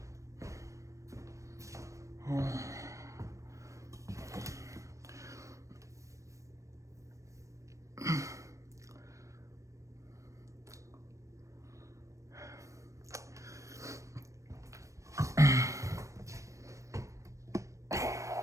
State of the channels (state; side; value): late; left; 0.15 ms